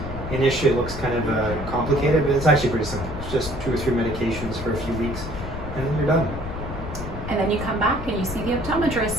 Initially it looks kind of complicated, but it's actually pretty simple. It's just 2 or 3 medications for a few weeks, and then you're done. And then you come back and you see the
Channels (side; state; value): left; noise; rumble, 8 dB below the sound